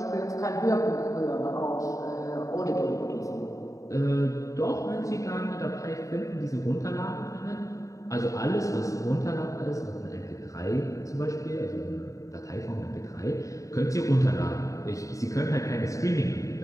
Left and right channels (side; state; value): right; late; 0.16 ms